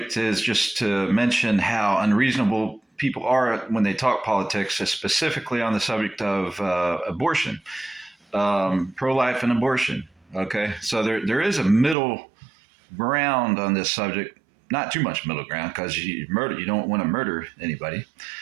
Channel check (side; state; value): left; drops out; at 12.0 s